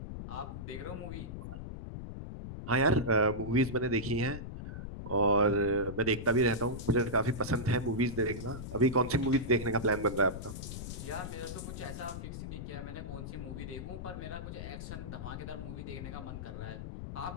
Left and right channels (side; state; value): left; noise; rumble, 8 dB below the sound